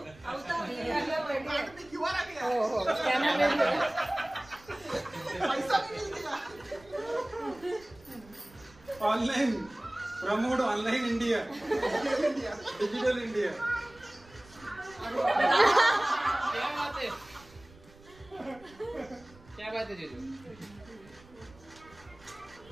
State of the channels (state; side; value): noise; right; rumble, 24 dB below the sound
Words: online promote online India digital India. क्या बात है जीजू?